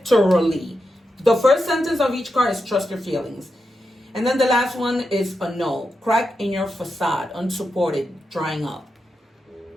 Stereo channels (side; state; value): both; normal; correlation 0.87